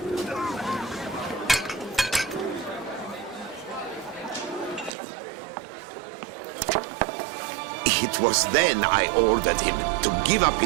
It was then I ordered him to give up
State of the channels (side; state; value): left; drops out; at 5.0 s